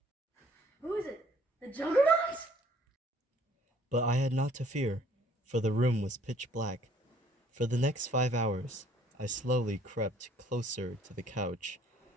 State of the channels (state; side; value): normal; both; correlation 0.59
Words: Who is it? The Juggernaut? But I had not to fear, for the room was pitch black. For the next 5 hours, I slowly crept closer to the couch